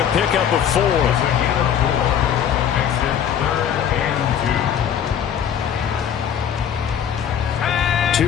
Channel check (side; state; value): right; quieter; 8.9 dB